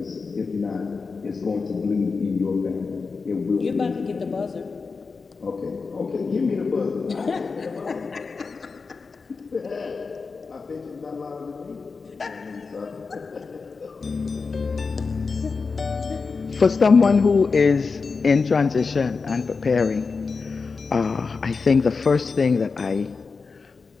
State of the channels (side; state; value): right; quieter; 4.6 dB